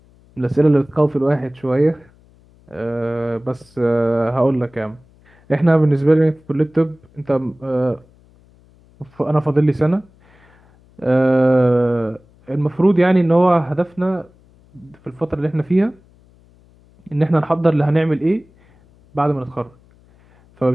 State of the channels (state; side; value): noise; left; hum, 30 dB below the sound